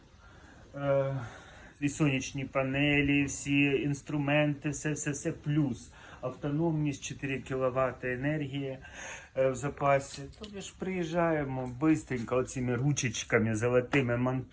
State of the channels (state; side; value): identical; both; correlation 1.00